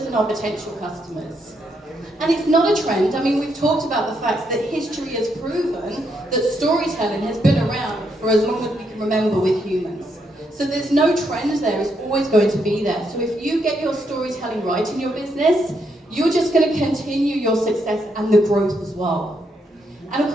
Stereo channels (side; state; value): both; normal; correlation 0.78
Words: and our potential customers. And it's not a trend. I mean, we've talked about the fact that history has proven that storytelling has been around for as long as we can remember with humans. So there's no trend there, it's always going to be there. So if you get your storytelling right in your business, you're just going to continue your success and the growth as well. And of